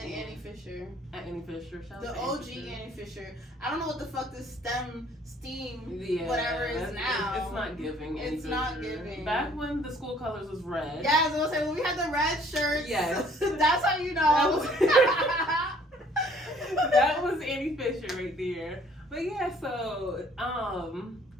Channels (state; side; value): normal; both; correlation 0.58